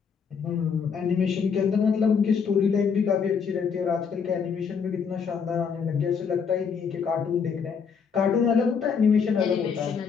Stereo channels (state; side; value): quieter; right; 6.3 dB